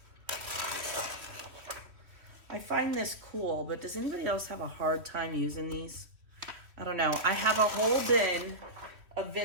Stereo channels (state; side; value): late; left; 3.0 ms